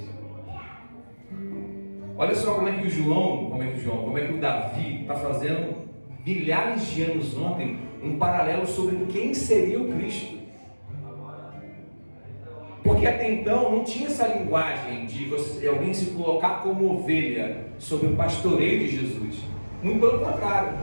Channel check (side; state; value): both; inverted; correlation -1.00